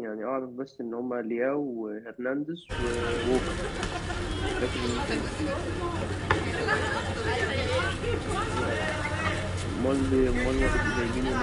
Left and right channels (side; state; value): both; identical; correlation 1.00